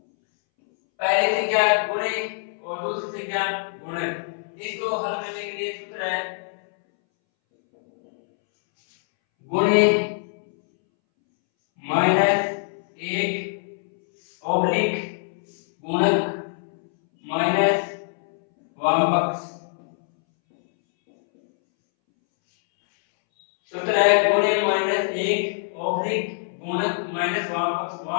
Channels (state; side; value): silent; right; 63 dB below the other